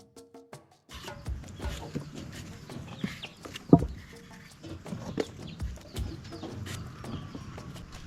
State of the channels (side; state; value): both; identical; correlation 1.00